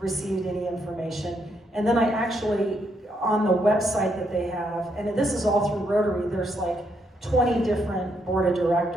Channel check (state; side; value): normal; both; correlation 0.76